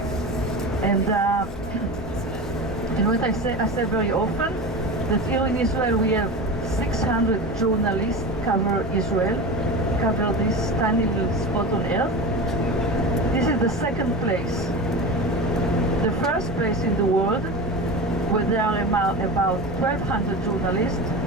And what I say very often, that here in Israel we have 600 journalists cover Israel, cover this tiny little spot on earth. This is the second place. The first place in the world, where there are about 1,200 journalists,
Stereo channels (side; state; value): both; normal; correlation 0.27